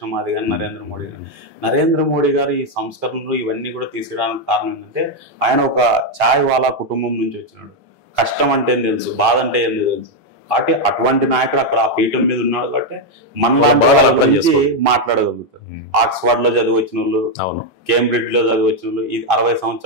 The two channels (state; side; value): normal; both; correlation 0.02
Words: మాదిగ నరేంద్ర మోడీ గారు ఈ సంస్కరణలు ఇవన్నీ కూడా తీసుకురావడానికి కారణం ఏంటంటే ఆయన ఒక ఛాయ్ వాలా కుటుంబం నుంచి వచ్చినాడు. కష్టం అంటే ఏం తెలుసు, బాధ అంటే ఏం తెలుసు. కాబట్టి అటువంటి నాయకుడు అక్కడ ఆ పీఠం మీద ఉన్నాడు కాబట్టి మన గురించి మాట్లాడగలుగుతారు. ఆక్స్ఫర్డ్ లో చదివి వచ్చిన వాళ్ళు, కేంబ్రిడ్జ్ లో చదివి వచ్చిన వాళ్ళు, 60